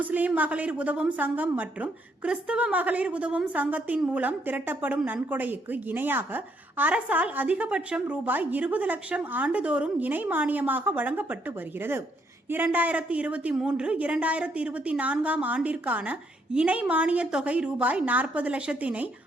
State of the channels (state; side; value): normal; both; correlation 0.72